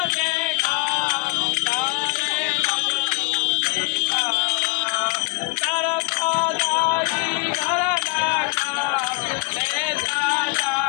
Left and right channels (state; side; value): quieter; right; 30.3 dB